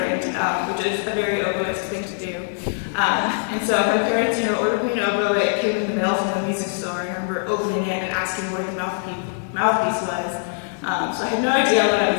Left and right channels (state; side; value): silent; right; 64 dB below the other